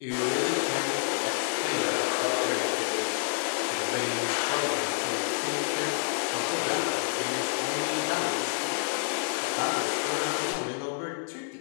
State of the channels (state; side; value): silent; right; 59 dB below the other